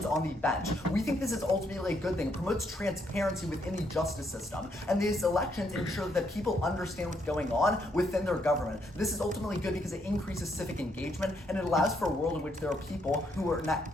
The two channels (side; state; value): both; normal; correlation 0.74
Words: on the bench. We think this is ultimately a good thing. It promotes transparency within the justice system, and these elections ensure that people understand what's going on within their government. This is ultimately good because it increases civic engagement, and it allows for a world in which there are people who